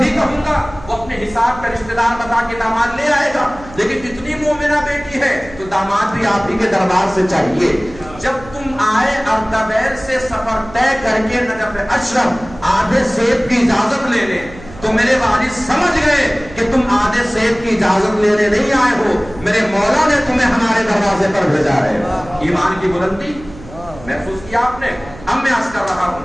کہوں گا وہ اپنے حساب کا رشتہ دار بتا کے داماد لے آئے گا. لیکن اتنی مومنہ بیٹی ہے تو داماد بھی آپ ہی کے دربار سے چاہیے. جب تم آئے اردبیل سے سفر طے کر کے نجف اشرف آدھے سیب کی اجازت لینے، تو میرے والد سمجھ گئے کہ تم آدھے سیب کی اجازت لینے نہیں آئے ہو، میرے مولا نے تمہیں ہمارے دروازے پر بھیجا ہے. ایمان کی بلندی محسوس کیا آپ نے؟ اب میں عرض کر رہا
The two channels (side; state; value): right; noise; hum, 18 dB below the sound